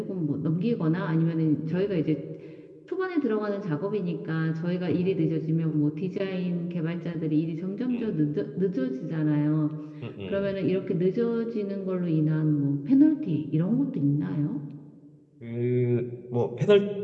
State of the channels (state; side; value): identical; both; correlation 1.00